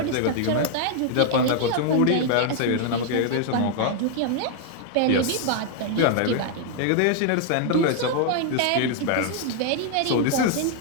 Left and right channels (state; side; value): different; both; correlation 0.00